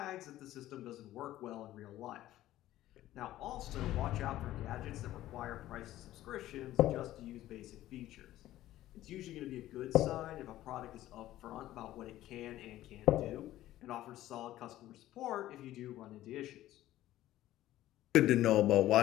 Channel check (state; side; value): quieter; right; 14.5 dB